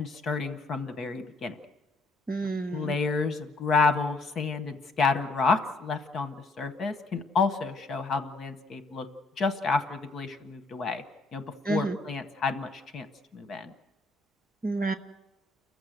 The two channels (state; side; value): quieter; right; 3.3 dB